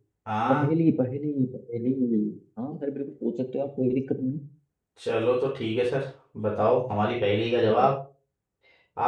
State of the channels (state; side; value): identical; both; correlation 1.00